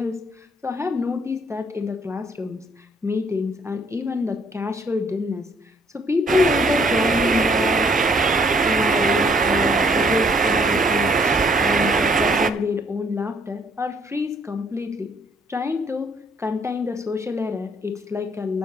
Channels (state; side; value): normal; both; correlation 0.65